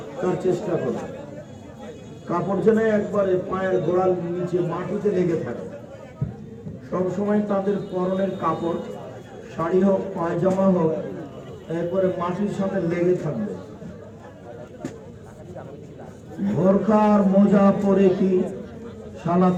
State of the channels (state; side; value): identical; both; correlation 1.00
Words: তার চেষ্টা করবে। কাপড় যেন একবারে পায়ের গোড়ার নিচে মাটিতে লেগে থাকে। সবসময় তাদের পরনের কাপড়, শাড়ি হোক পায়জামা হোক, একবারে মাটির সাথে লেগে থাকবে। বোরখা আর মোজা পরে কি সালাত